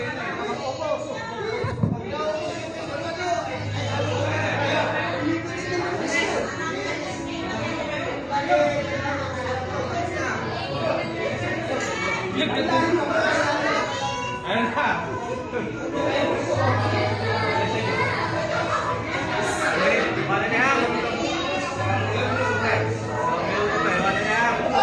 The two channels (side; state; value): both; identical; correlation 1.00